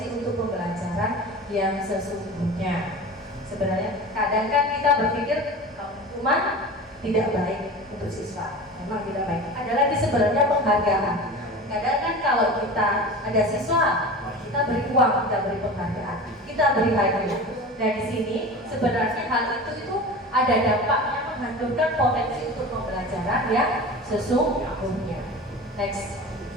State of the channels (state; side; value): normal; both; correlation 0.33